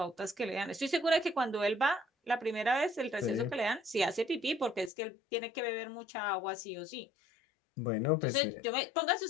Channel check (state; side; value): drops out; right; at 4.9 s